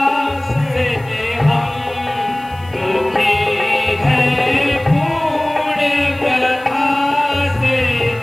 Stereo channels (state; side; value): noise; left; hiss, 28 dB below the sound